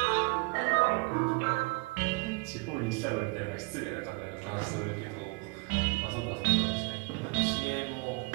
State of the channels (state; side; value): quieter; left; 28.8 dB